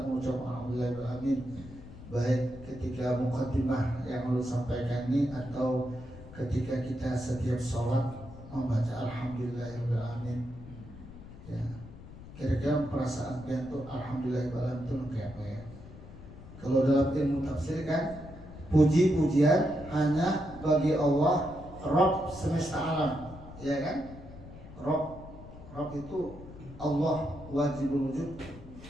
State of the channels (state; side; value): noise; left; rumble, 16 dB below the sound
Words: mengucap alhamdulillahirabbil baik ketika muqaddimah yang lalu sampaikan ini atau ketika kita setiap sholat membaca alhamdulillahirabbil. Ya. Kira-kira perasaan kita tuh alhamdulillahirabbil itu kayak apa ya? Kalau dalam ilmu tafsir kan, puji-pujian hanya bagi Allah, Rabb semesta alam, ya kan? Rabb itu Allah wajibul wujud,